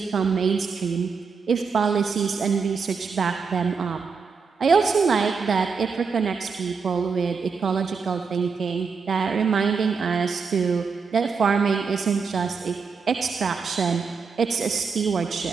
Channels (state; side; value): quieter; left; 5.3 dB